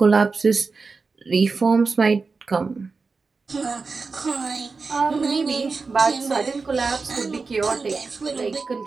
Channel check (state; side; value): quieter; left; 4.4 dB